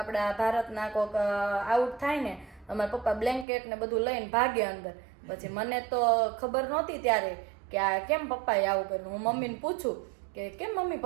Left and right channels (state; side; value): drops out; left; at 3.5 s